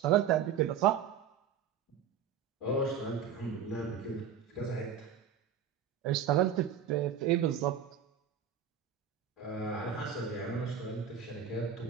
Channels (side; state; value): left; quieter; 7.8 dB